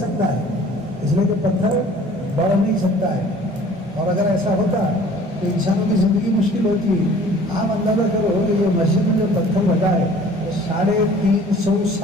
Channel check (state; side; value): normal; both; correlation 0.50